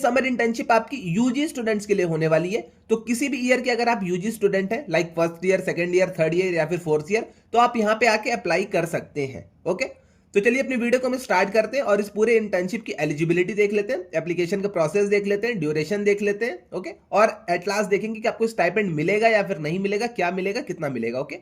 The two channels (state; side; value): identical; both; correlation 1.00